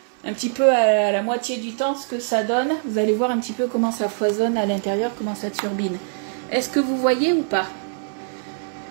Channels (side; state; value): left; silent; 59 dB below the other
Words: un petit peu à la moitié du temps ce que ça donne. Vous allez voir un petit peu comment ça foisonne à l'intérieur, comment ça turbine. Est-ce que vous voyez ou pas?